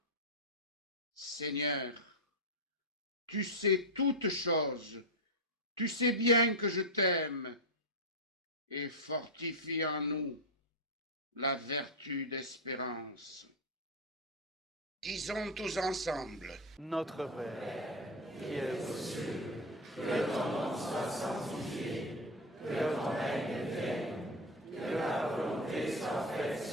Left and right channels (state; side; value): normal; both; correlation 0.09